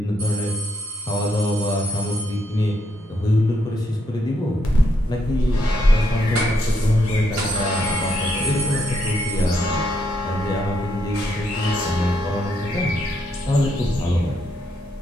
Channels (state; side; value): normal; both; correlation 0.76